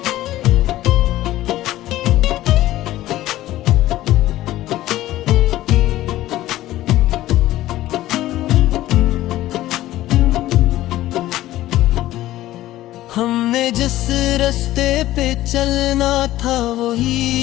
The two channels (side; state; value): right; quieter; 15.1 dB